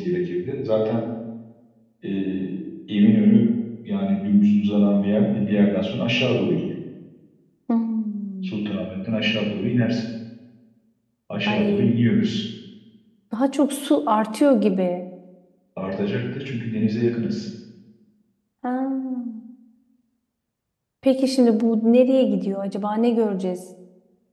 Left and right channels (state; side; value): identical; both; correlation 1.00